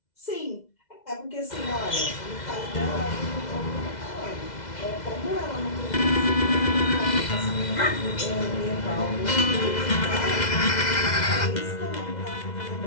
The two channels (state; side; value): late; right; 2.0 ms